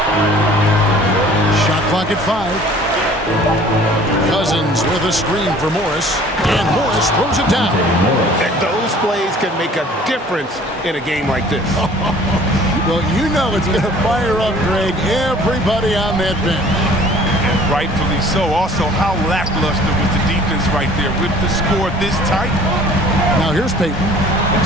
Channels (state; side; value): normal; both; correlation 0.51